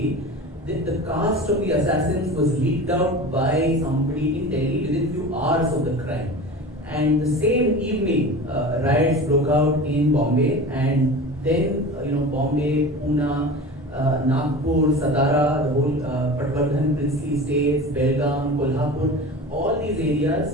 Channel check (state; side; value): normal; both; correlation 0.33